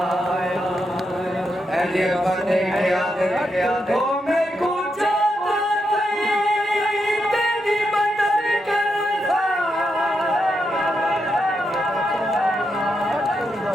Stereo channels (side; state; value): both; normal; correlation 0.83